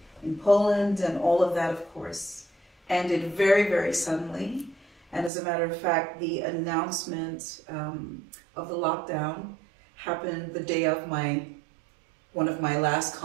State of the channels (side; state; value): left; drops out; at 5.3 s